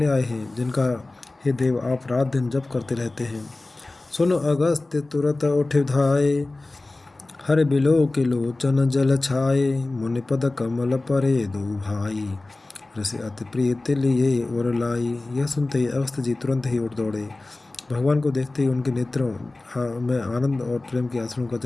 आए हैं, जिनका हे देव आप रात दिन जप करते रहते हैं। सुन अगस्त तुरत उठ धाये, हर बिलो के लोचन जल छाए। मुनिपद कमल परे दो भाई, ऋषि अति प्रीत लिए और लाई। यह सुनते ही अगस्त जी तुरंत ही उठ दौड़े। भगवान को देखते ही उनके नेत्रों में आनंद और प्रेम के आंसुओं का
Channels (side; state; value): right; quieter; 3.0 dB